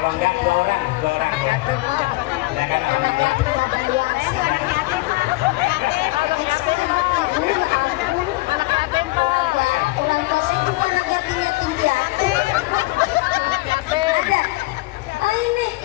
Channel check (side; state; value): right; quieter; 21.2 dB